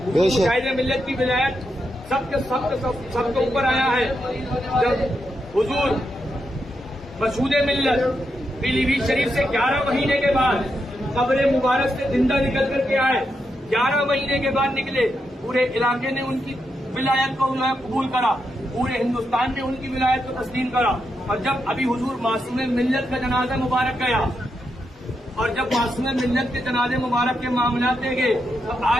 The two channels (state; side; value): normal; both; correlation 0.84